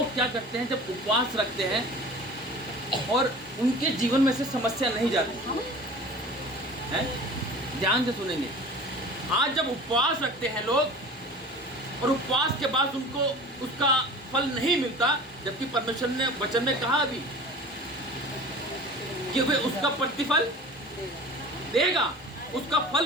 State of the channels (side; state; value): both; normal; correlation 0.40